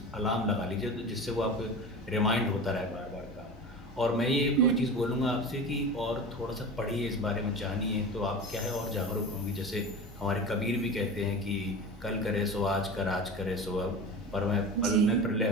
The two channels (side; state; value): both; normal; correlation 0.31